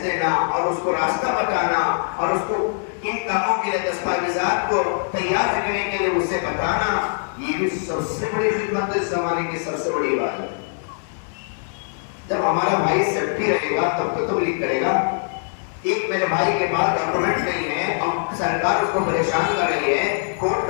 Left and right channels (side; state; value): right; silent; digital silence